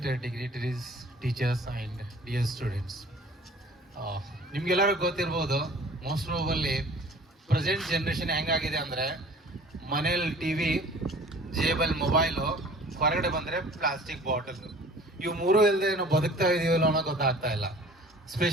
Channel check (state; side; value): normal; both; correlation 0.48